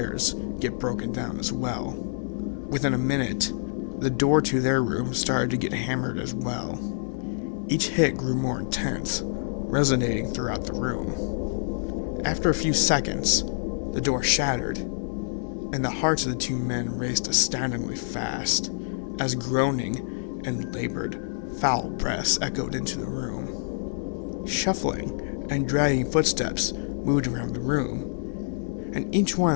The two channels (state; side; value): silent; right; digital silence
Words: get broken down as well. Within a minute, the door to their room started to get hammered as well. Each hit grew more intense, resonating throughout the room. After a few seconds, the door shattered, and the hearts of the two men raced astoundingly fast, as groaning and labored, foul breaths echoed into the room. Shuffling and dragging footsteps moved around the room, and each